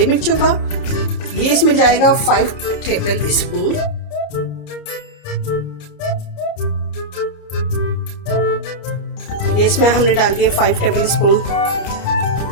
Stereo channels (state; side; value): late; right; 29 ms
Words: मिर्चों का। ये इसमें जाएगा 5 टेबल स्पून। ये इसमें हमने डाल दिए 5 टेबल स्पून।